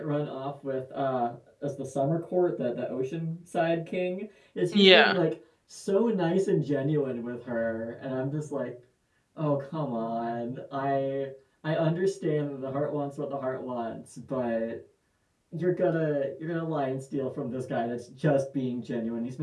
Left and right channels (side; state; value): both; identical; correlation 1.00